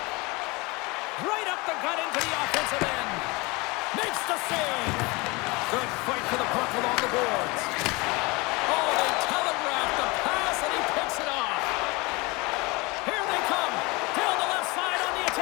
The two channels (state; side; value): quieter; right; 25.3 dB